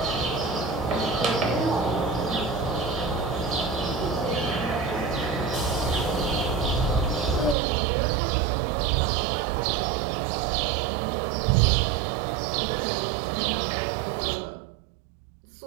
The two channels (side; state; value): left; drops out; at 7.6 s